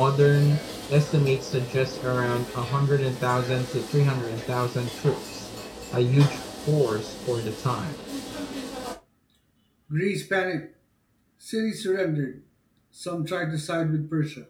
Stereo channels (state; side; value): identical; both; correlation 1.00